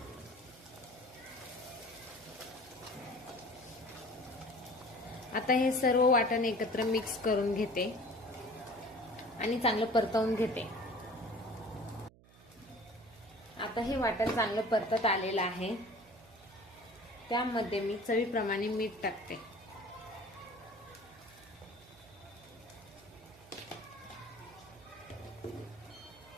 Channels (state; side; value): noise; right; hum, 25 dB below the sound